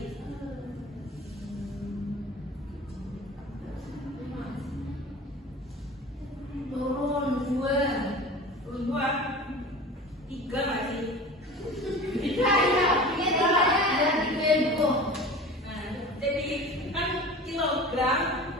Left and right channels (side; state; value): both; normal; correlation 0.37